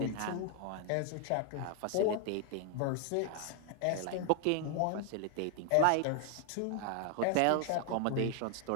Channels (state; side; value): different; both; correlation 0.00